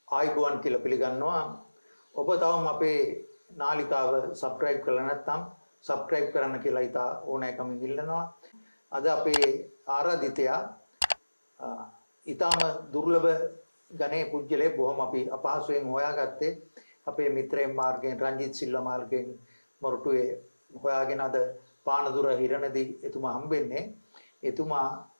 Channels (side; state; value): both; inverted; correlation -1.00